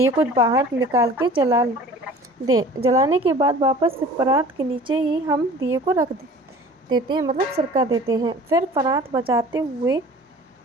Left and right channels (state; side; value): normal; both; correlation 0.45